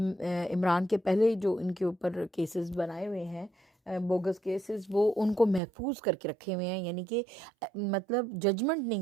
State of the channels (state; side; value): drops out; left; at 5.6 s